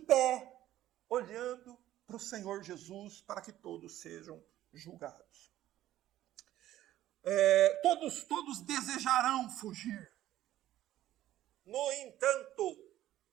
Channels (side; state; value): left; quieter; 13.6 dB